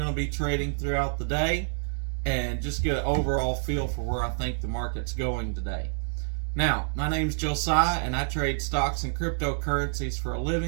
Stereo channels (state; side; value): silent; left; digital silence